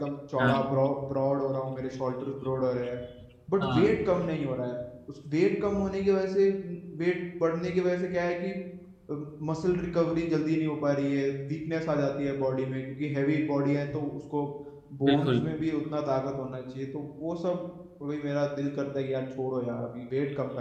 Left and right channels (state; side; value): identical; both; correlation 1.00